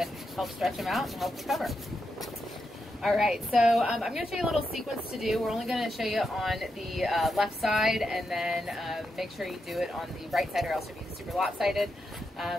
help stretch them out and help recover. All right, so I'm going to show you a little sequence to do. We're only going to show you on the left side, and then make sure you do it on the right side or else you'll be super lopsided.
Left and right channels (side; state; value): both; normal; correlation 0.85